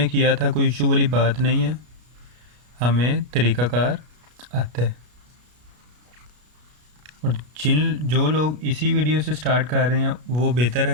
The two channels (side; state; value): left; late; 33 ms